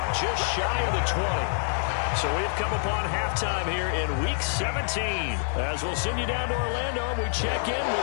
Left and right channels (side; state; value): right; silent; digital silence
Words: just shy of the 20. So we've come upon halftime here in Week 17. As we'll send you down to Orlando, we check in